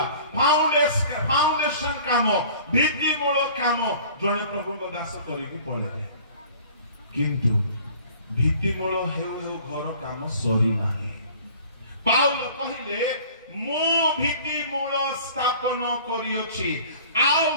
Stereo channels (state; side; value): inverted; both; correlation -0.48